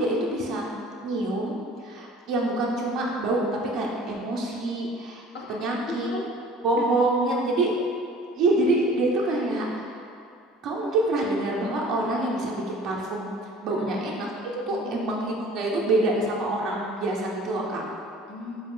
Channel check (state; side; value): normal; both; correlation 0.48